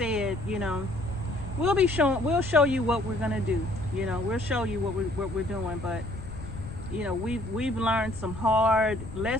you know, we'll show you what we're gonna do. You know, we'll show you what we're doing. But you know, we've learned some hard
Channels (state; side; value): noise; left; rumble, 11 dB below the sound